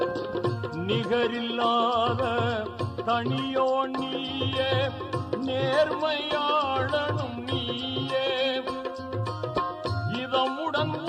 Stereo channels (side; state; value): both; identical; correlation 1.00